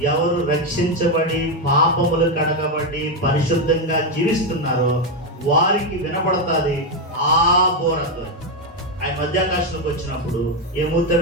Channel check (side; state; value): both; normal; correlation 0.06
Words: ఎవరు రక్షించబడి పాపములు కడగబడి పరిశుద్ధంగా జీవిస్తున్నారో వారికి వినపడుతుంది ఆ బోరతో. ఆయన మధ్యాకాశంలోకి వచ్చినప్పుడు